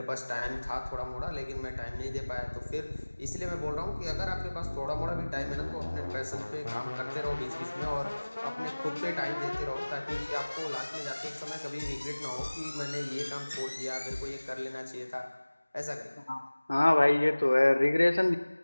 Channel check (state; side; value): inverted; both; correlation -1.00